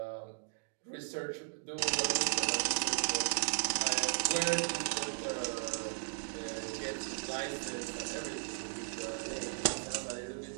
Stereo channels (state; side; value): silent; left; digital silence